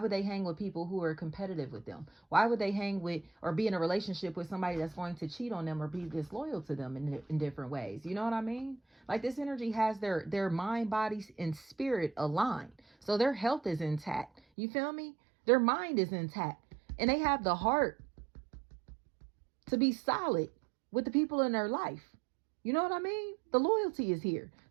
they hang with people who are competitive with them? Why would they hang with or be in a relationship with somebody that's going to cheat on them or be disloyal to them in different ways? You know what I mean? Like, this energy has their mind, body, and spirit aligned. So their health is intact. You feel me? Their mind is intact. And they have the heart to be solid with the people in their life. You know what I mean? The loyalty is here.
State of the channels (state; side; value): drops out; left; at 14.4 s